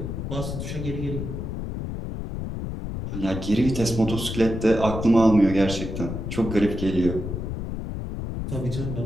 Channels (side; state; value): left; noise; rumble, 5 dB below the sound